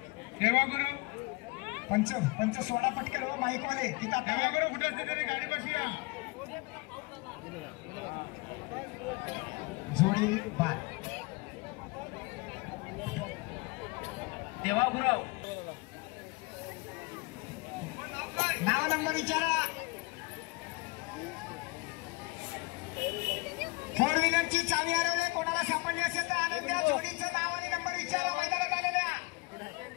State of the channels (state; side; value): quieter; right; 26.3 dB